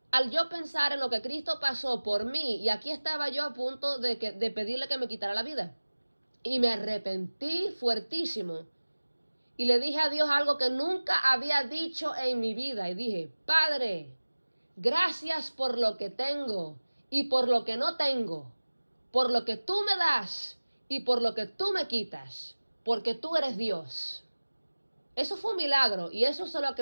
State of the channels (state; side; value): inverted; both; correlation -1.00